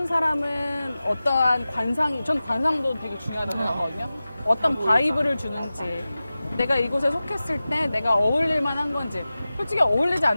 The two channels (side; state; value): both; inverted; correlation -0.96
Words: 사람은 어떠한 전 관상도 되게 중요하다고 생각하거든요. 어떤 바이브를 주는지 내가 이곳에 속했을 때 내가 어울릴 만한 건지 솔직히 어울리지